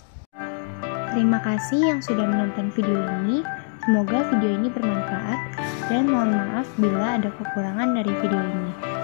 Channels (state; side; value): silent; right; 63 dB below the other